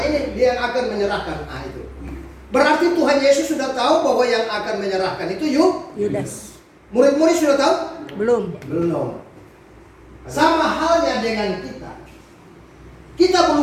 ini dia yang akan menyerahkan. Nah itu. Berarti Tuhan Yesus sudah tahu bahwa yang akan menyerahkan itu Yudas. Murid-murid sudah tahu? Belum. Belum. Sama halnya dengan kita. Kita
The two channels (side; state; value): both; identical; correlation 1.00